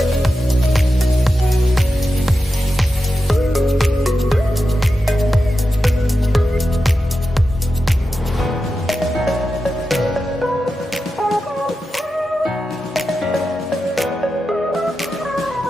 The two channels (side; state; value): both; normal; correlation 0.90